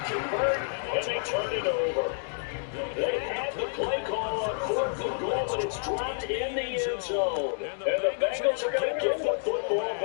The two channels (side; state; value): right; silent; digital silence